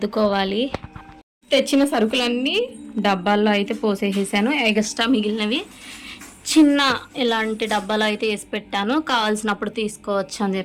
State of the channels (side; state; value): both; identical; correlation 1.00